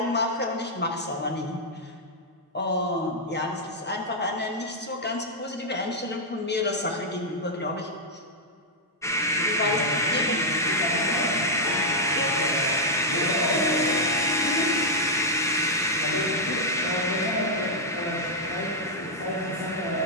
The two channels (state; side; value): normal; both; correlation -0.04